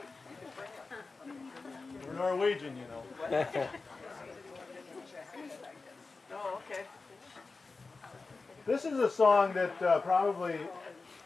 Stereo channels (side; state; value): right; quieter; 4.0 dB